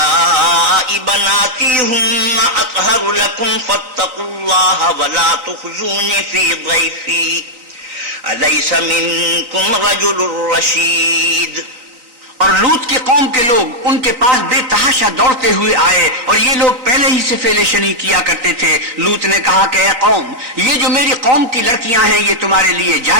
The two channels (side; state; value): left; late; 3.8 ms